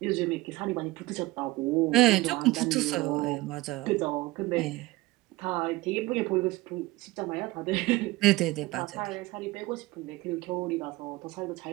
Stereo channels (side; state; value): left; quieter; 19.7 dB